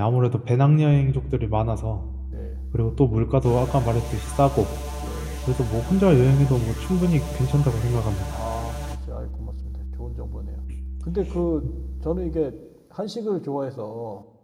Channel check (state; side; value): identical; both; correlation 1.00